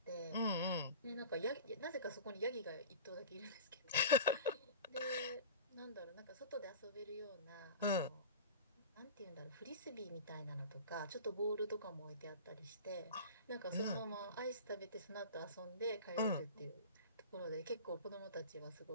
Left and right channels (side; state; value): both; inverted; correlation -0.35